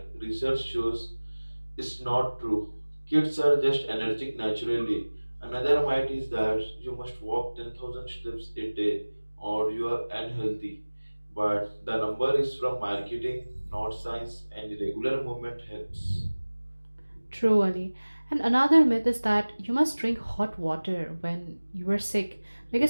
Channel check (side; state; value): both; inverted; correlation -1.00